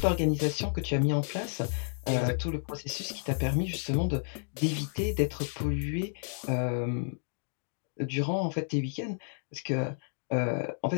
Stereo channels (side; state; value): right; silent; digital silence